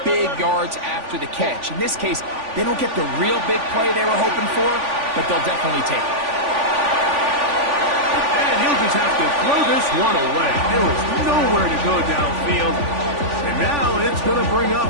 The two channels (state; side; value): late; left; 3.5 ms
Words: big yards after the catch. In this case, they don't get the real big play they were hoping for, but they'll definitely take it. And he'll just have to throw this one away. There was nowhere to go downfield. And now it's going to bring up